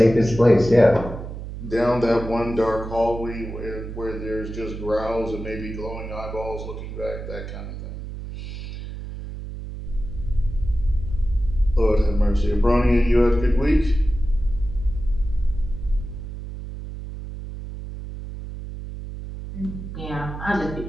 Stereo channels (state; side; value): noise; right; hum, 9 dB below the sound